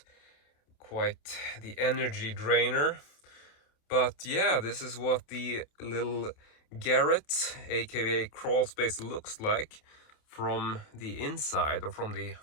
quite the energy drainer. But yeah, this is what the little Garret, aka crawl space, looks like from the inside or from the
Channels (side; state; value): right; late; 28 ms